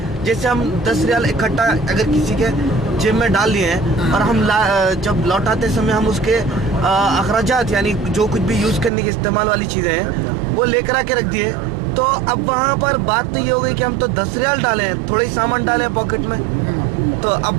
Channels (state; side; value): drops out; left; at 8.9 s